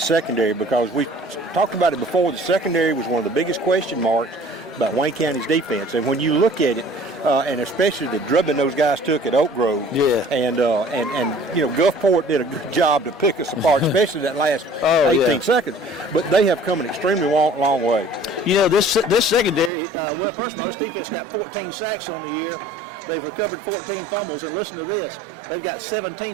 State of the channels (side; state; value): left; drops out; at 19.7 s